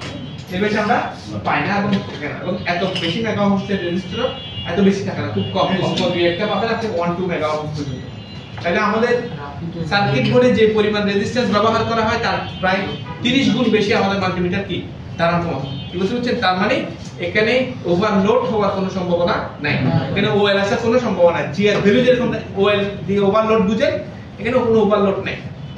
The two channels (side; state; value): both; identical; correlation 1.00